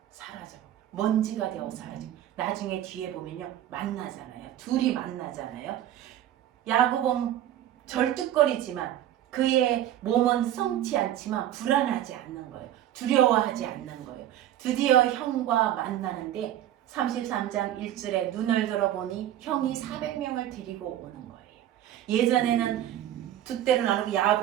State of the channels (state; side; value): quieter; left; 12.1 dB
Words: 사라져. 먼지가 되어 사라지고 나중에 뒤에 보면요 만나잖아요. 둘이 만나잖아요. 야곱은 절뚝거리지만 그의 몸은 성치 않지만 불안하지 않는 거예요. 두려워하지 않는 거예요. 드디어 형과 만나는데 33장 1절에 눈을 들어보니 형이 400명을 데리고 오는 거예요. 예전에는 두 때로 나누고